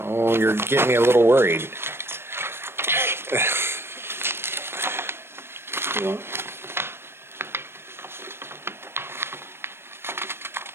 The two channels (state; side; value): late; left; 0.12 ms